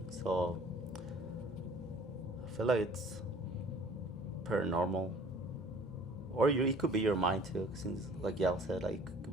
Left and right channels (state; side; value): normal; both; correlation 0.50